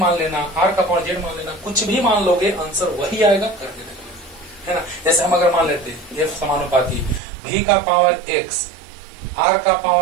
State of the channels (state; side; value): drops out; left; at 7.2 s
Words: लेना, r का पावर z मान लेना, कुछ भी मान लोगे, आंसर वही आएगा, करके देख लो, है ना। जैसे हम अगर मान लेते f समानुपाती v का पावर x, r का